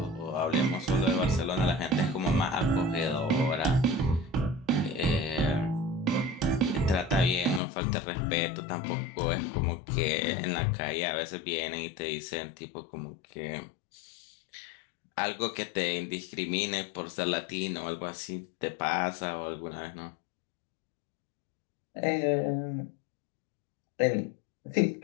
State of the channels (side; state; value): right; drops out; at 7.6 s